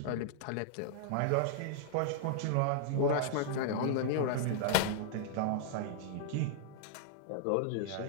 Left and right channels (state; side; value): different; both; correlation -0.01